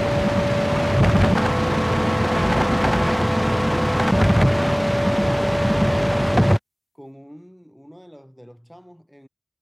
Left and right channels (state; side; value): identical; both; correlation 1.00